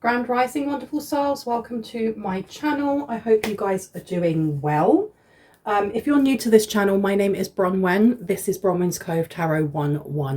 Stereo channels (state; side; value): identical; both; correlation 1.00